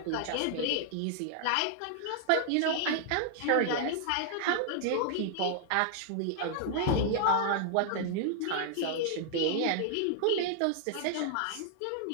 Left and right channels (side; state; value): both; different; correlation -0.01